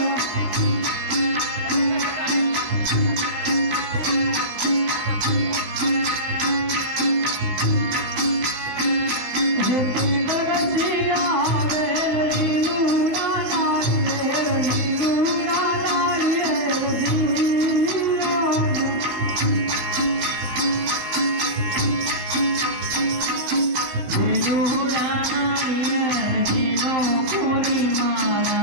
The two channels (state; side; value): late; left; 15 ms